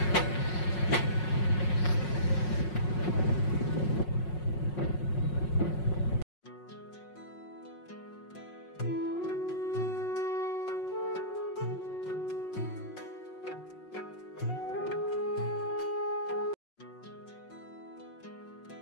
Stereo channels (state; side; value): late; right; 5.5 ms